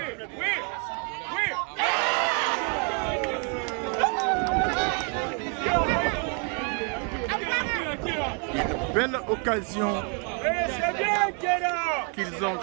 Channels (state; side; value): quieter; left; 38.6 dB